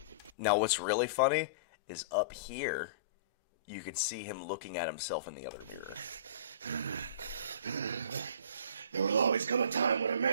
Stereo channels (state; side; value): inverted; both; correlation -0.40